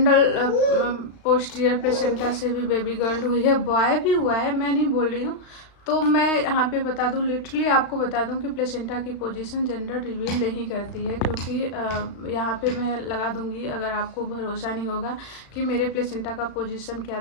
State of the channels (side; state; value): right; late; 35 ms